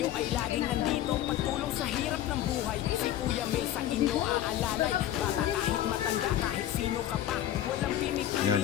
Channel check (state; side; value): quieter; right; 12.3 dB